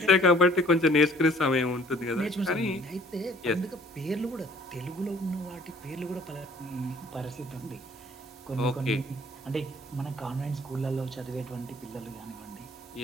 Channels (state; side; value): normal; both; correlation 0.56